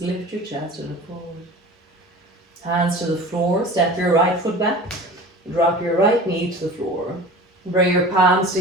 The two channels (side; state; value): both; normal; correlation 0.38